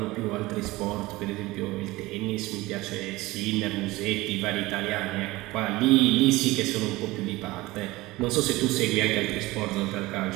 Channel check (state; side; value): quieter; left; 20.0 dB